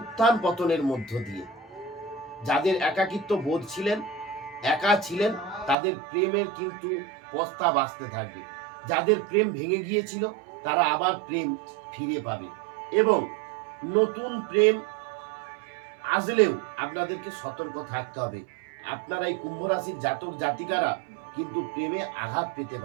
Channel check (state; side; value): drops out; left; at 5.8 s